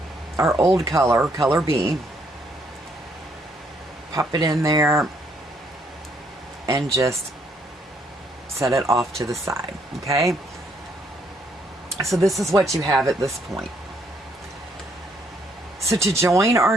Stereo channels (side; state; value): both; normal; correlation 0.70